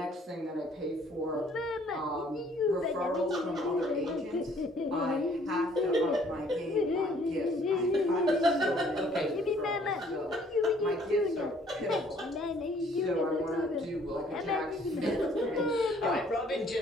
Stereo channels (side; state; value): both; normal; correlation 0.60